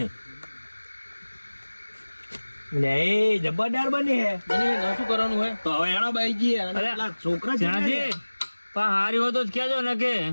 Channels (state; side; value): inverted; both; correlation -1.00